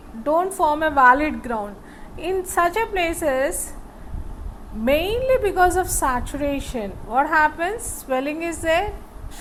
don't form a valid ground. In such a places, mainly because of saturation, what happens? Swelling is there,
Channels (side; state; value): both; identical; correlation 1.00